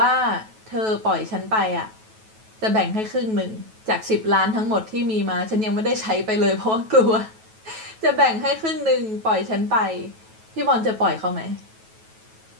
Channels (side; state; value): left; late; 9.2 ms